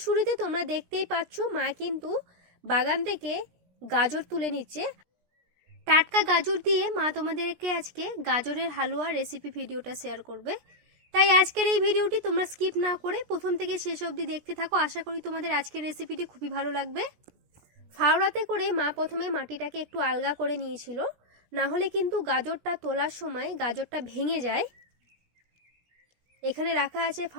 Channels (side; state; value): left; late; 17 ms